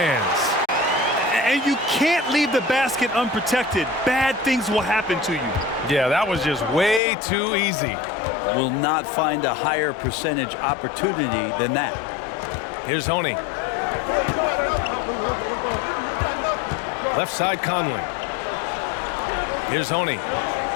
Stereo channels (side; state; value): right; drops out; at 7.0 s